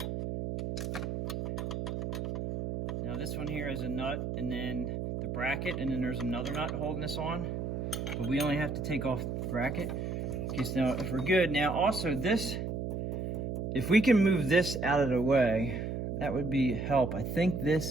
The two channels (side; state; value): right; noise; hum, 3 dB below the sound